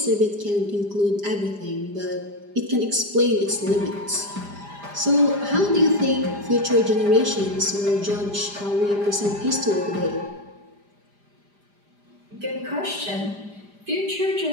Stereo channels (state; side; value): late; left; 5.0 ms